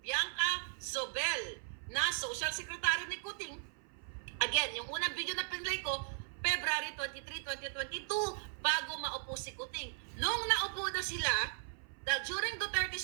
Bianca Sobel, na Social Secretary ni Kuting. Again, yung unang video na pinlay ko, February 23, 2022, bago maupo si Kuting. Nung naupo na sila, during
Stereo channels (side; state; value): left; silent; 53 dB below the other